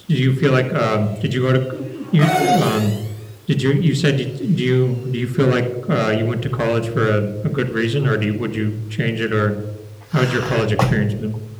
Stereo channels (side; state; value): both; identical; correlation 1.00